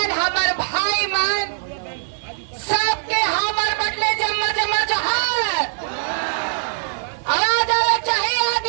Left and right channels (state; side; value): silent; left; digital silence